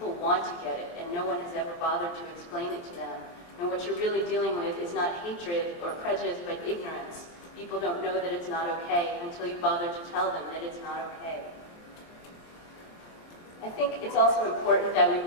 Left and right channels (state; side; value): late; right; 23 ms